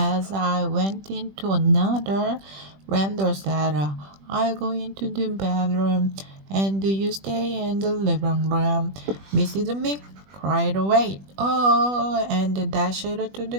I went into another. Randall said, I'll go into the bedroom and you stay in the living room. Mrs. Mick cried, wait, oh, and dashed to the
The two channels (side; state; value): left; late; 21 ms